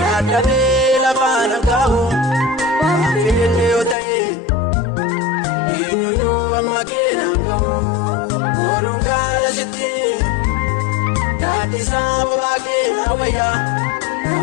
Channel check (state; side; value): drops out; right; at 4.0 s